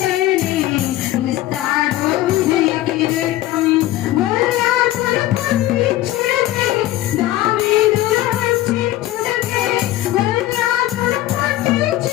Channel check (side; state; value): right; quieter; 15.1 dB